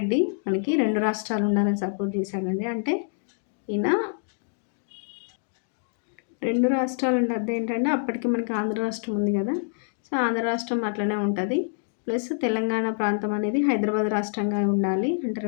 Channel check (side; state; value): right; silent; 61 dB below the other